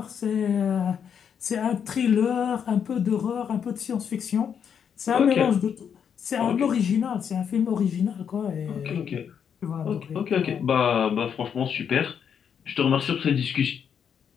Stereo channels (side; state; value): right; quieter; 7.7 dB